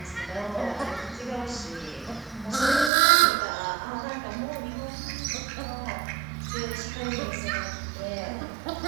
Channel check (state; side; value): drops out; left; at 2.9 s